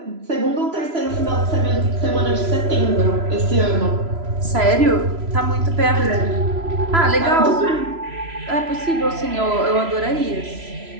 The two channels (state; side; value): late; left; 3.0 ms